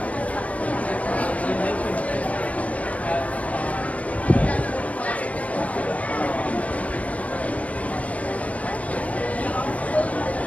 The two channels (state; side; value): late; right; 0.067 ms